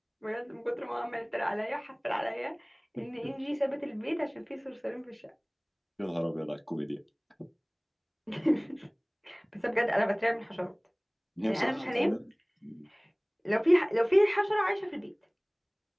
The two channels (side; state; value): both; identical; correlation 1.00